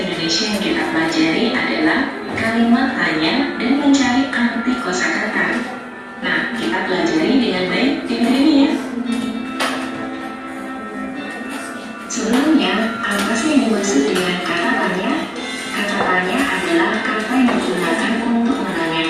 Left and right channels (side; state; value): both; identical; correlation 1.00